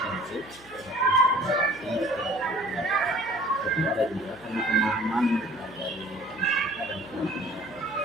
tapi ada juga karena pemahaman dari masyarakat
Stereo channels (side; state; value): right; noise; hum, 26 dB below the sound